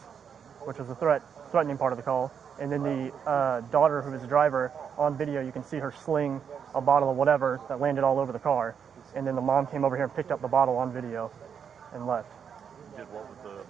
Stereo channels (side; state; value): left; quieter; 7.3 dB